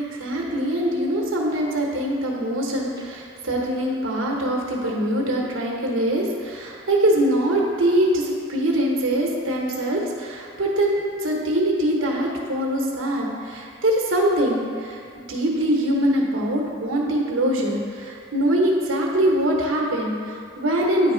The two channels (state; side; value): normal; both; correlation 0.37